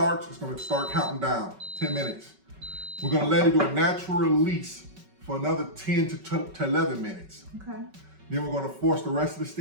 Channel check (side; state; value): left; late; 5.3 ms